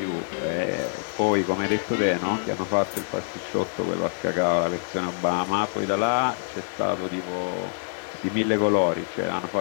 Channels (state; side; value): silent; right; digital silence